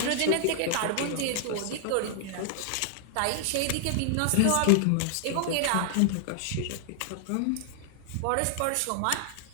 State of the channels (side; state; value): both; different; correlation -0.01